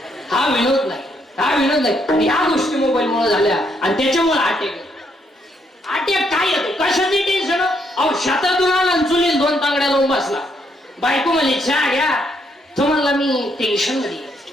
हा विनोद नाही, हा विनोद नाही. आणि ह्या गोष्टी मोबाईल मुळे झाल्या आणि त्याच्यामुळे अटॅक काय येतो, कशाची टेन्शन. अहो शेतातून आला चुलीत 2 तांगड्या लावून बसला, बायको म्हणली चहा घ्या, तो म्हणला मी टेन्शन मध्ये.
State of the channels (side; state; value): both; normal; correlation 0.74